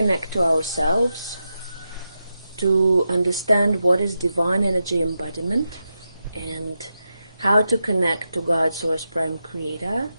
to ourselves, to understand what is divine energy embodiment and how to connect to God, Source, Prime Creator,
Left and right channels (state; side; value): inverted; both; correlation -0.88